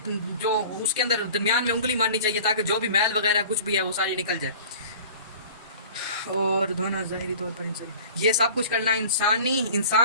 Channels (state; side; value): inverted; both; correlation -0.42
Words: جو اس کے اندر درمیان میں انگلی مارنی چاہیے تاکہ جو بھی میل وغیرہ کچھ بھی ہے وہ ساری نکل جائے۔ اور دھونا ظاہری طور پر یہ سب کچھ کرنا